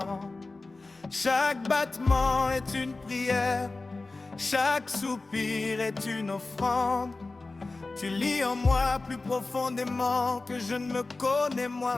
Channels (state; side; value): quieter; right; 3.4 dB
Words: Chaque battement est une prière, chaque soupir est une offrande. Tu lis en moi plus profondément que je ne me connais